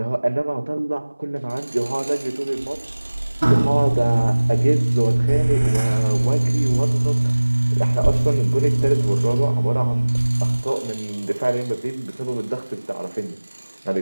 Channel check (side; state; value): both; inverted; correlation -1.00